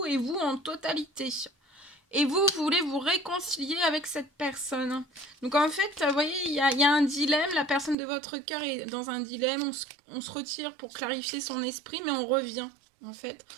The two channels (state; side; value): drops out; left; at 8.0 s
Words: et vous en totalité. Et vous voulez vous réconcilier avec cette personne. Donc en fait, vous voyez, il y a un dilemme. La personne de votre cœur est dans un dilemme. On se retire pour clarifier son esprit, mais on revient, en fait.